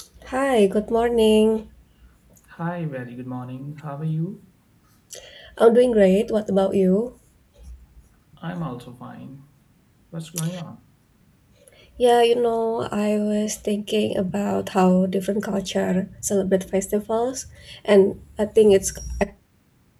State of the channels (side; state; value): both; identical; correlation 1.00